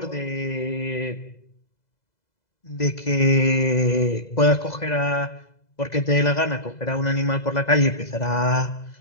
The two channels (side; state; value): right; late; 2.0 ms